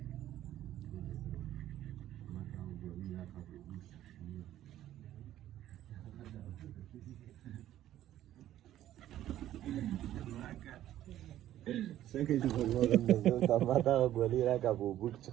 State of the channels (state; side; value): quieter; left; 12.7 dB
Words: څنګه چې په ګورم دا ما ته ګولې راکړه په بوټ چې